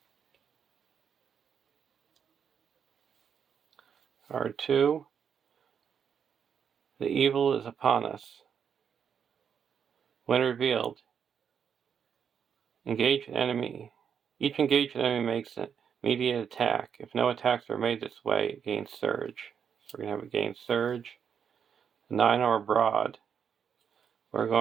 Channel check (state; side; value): quieter; left; 7.5 dB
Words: Card 2. The evil is upon us. When revealed, engage an enemy. Each engaged enemy makes an immediate attack. If no attacks are made this way, it gains Surge. So we're going to have a gain Surge. 9 or broad. We're